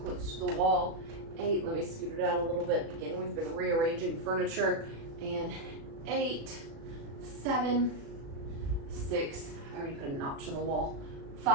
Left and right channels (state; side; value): late; left; 36 ms